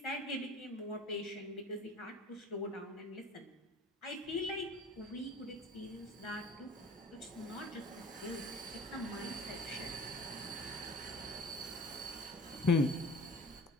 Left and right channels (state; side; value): normal; both; correlation 0.44